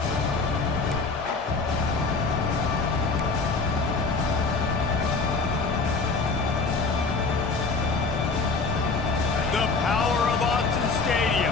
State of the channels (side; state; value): right; quieter; 4.1 dB